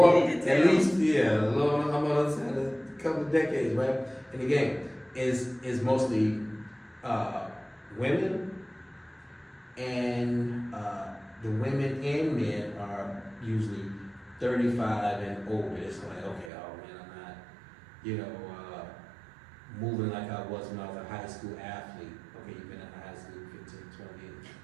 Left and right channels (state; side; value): drops out; left; at 16.5 s